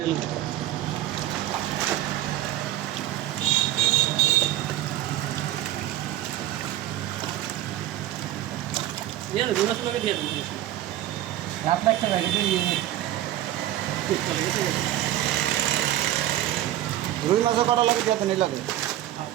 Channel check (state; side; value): quieter; left; 13.7 dB